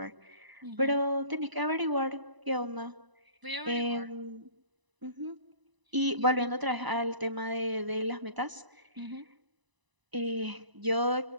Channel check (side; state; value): left; late; 1.0 ms